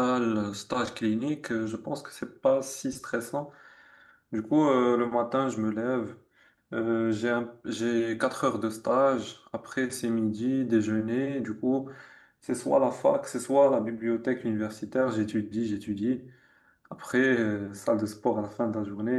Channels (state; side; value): identical; both; correlation 1.00